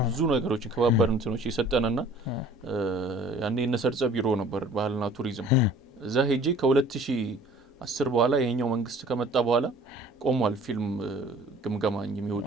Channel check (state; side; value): normal; both; correlation 0.50